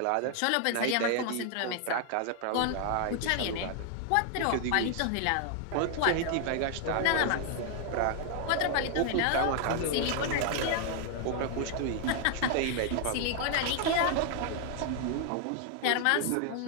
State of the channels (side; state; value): both; different; correlation 0.00